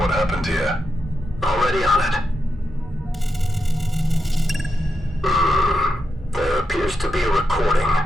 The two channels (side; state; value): both; normal; correlation 0.85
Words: happened here. Already on it. There appears to be a recording.